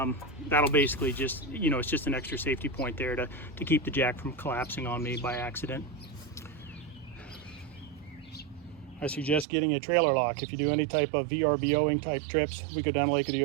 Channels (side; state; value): left; drops out; at 9.5 s